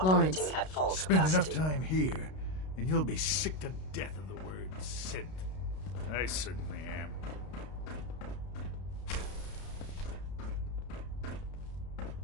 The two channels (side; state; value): right; late; 32 ms